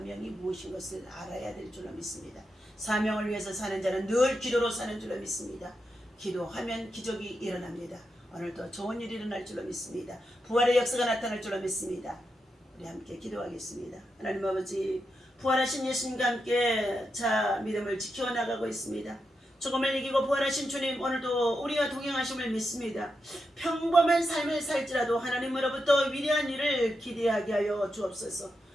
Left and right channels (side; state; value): both; normal; correlation 0.86